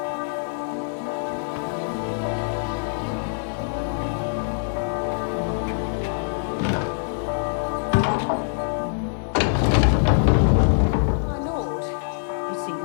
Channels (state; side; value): silent; right; digital silence